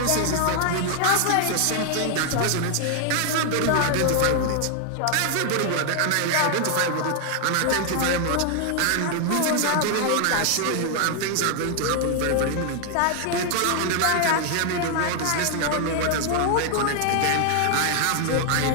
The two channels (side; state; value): both; different; correlation 0.00